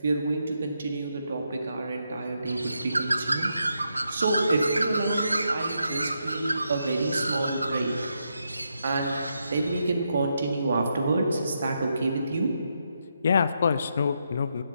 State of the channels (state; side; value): inverted; both; correlation -0.81